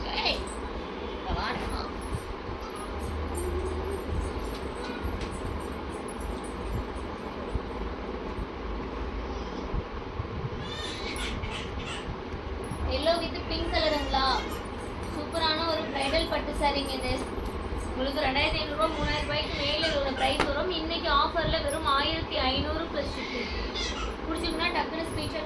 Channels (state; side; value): identical; both; correlation 1.00